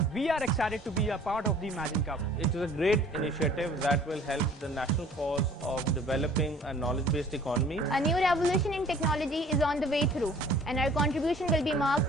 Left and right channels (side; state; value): both; normal; correlation 0.51